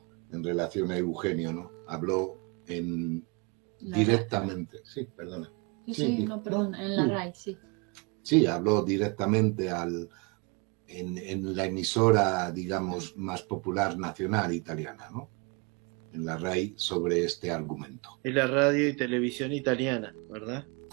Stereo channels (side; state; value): left; quieter; 31.4 dB